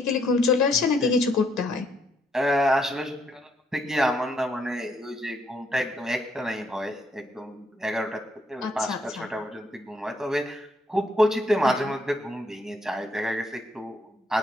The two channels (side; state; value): both; normal; correlation 0.71